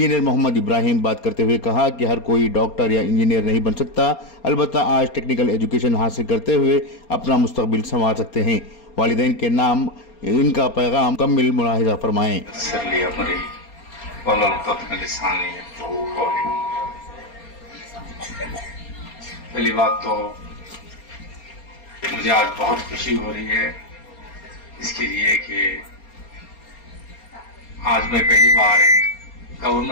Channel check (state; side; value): late; right; 4.3 ms